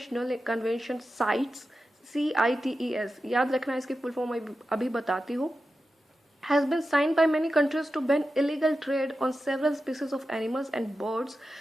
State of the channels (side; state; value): both; normal; correlation 0.91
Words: convention CITES, CITES, याद रखना इसकी full form अभी बताती हूँ, has been signed by many countries to ban illegal trade on several species of animals and birds।